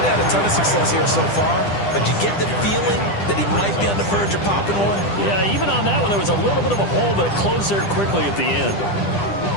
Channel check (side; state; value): right; late; 10 ms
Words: had a ton of success here so far, but you get the feeling that he might be on the verge of popping one. Yeah, even on that one, there was a little bit of a hole, but it closed there quickly at the end.